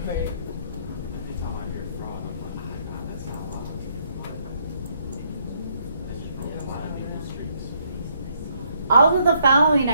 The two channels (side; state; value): both; inverted; correlation -0.71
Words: Anytime I hear fraud, I'm like, God, that's not allowed. That's just really violating the streets. All of the following